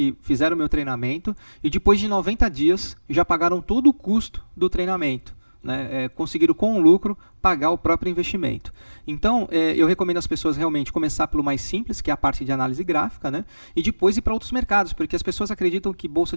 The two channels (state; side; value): inverted; both; correlation -1.00